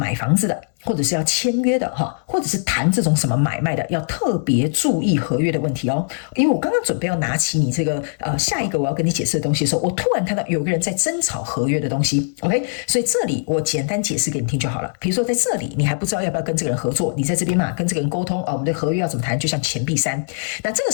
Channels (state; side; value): silent; right; digital silence